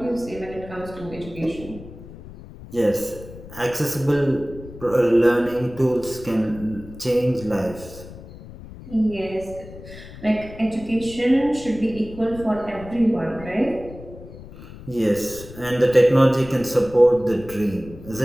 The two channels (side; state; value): left; noise; rumble, 16 dB below the sound